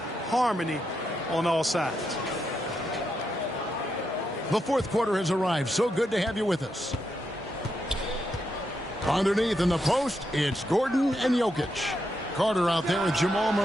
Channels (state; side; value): normal; both; correlation 0.83